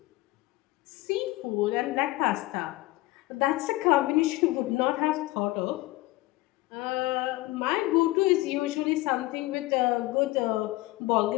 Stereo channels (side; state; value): right; quieter; 19.4 dB